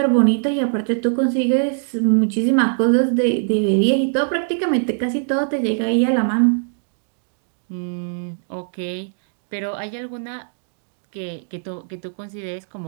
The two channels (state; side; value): silent; left; digital silence